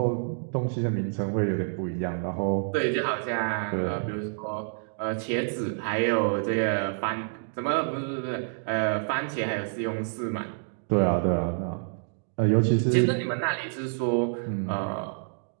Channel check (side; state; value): left; silent; digital silence